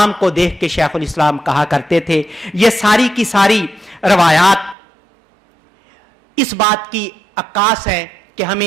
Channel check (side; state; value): left; drops out; at 4.8 s